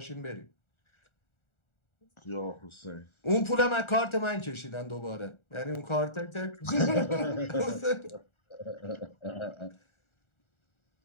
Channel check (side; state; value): right; late; 1.4 ms